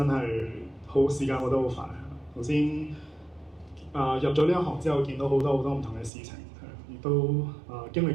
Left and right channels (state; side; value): drops out; left; at 6.1 s